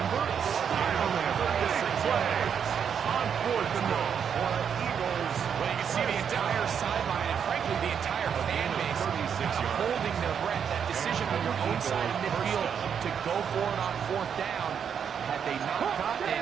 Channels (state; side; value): quieter; left; 7.6 dB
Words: style there. Big play on 4th and long. Eagles. Well, you can see the entire sideline and, frankly, the entire fan base holding their breath. That decision on your own side of midfield to go for it on 4th down. Had they not gotten